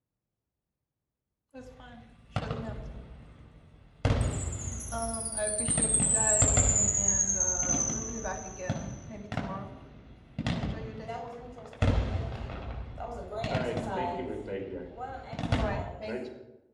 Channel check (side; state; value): both; identical; correlation 1.00